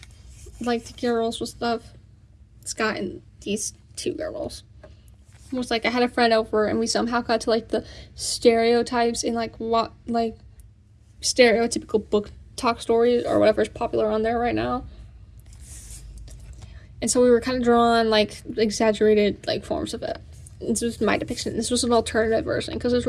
like, the girls with stuff, this guy and these 2 girls, was, like, I had a friend over, and we somehow got to, like, the stereotypes in, like, what, like, stereotypical book talk stories, or whatever is popular on there right now. And so we were kind of drawing, like, exaggerated, like, forms of it. This was my depiction. This was an alternative version, because there's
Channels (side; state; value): both; identical; correlation 1.00